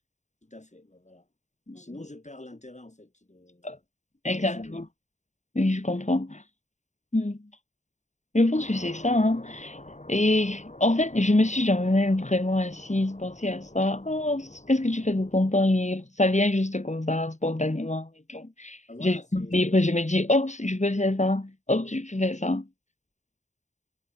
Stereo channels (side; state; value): right; late; 0.34 ms